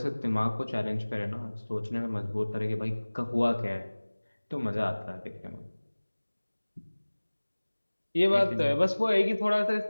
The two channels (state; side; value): inverted; both; correlation -1.00